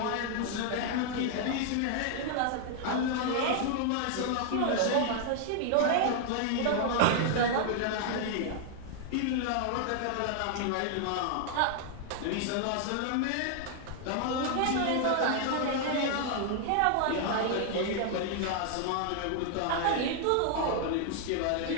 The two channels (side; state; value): both; different; correlation 0.00